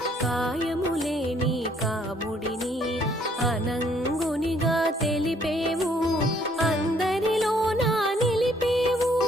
కాయములేని కాముడిని అనంగునిగా తెలిపేవు అందరిలో నా నిలిపేవు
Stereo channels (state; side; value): normal; both; correlation 0.64